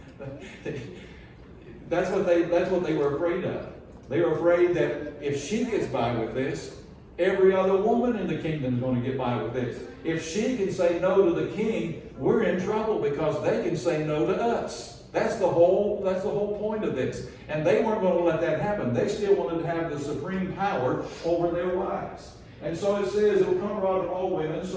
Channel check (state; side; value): identical; both; correlation 1.00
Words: That's what they were afraid of. They were afraid that if she gets by with this, every other woman in the kingdom is going to get by with this. If she can say no to the king, we're in trouble because they can say no to us. That's the whole point of this. And they weren't going to let that happen. They still wanted to have the supreme power over their wives. And so it says, it will come abroad to all women,